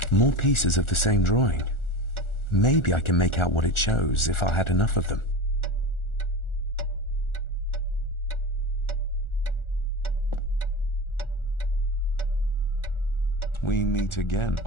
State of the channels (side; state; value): right; late; 1.4 ms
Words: More pieces of the same drawing. Maybe I can make out what it shows if I had enough of them. We meet again,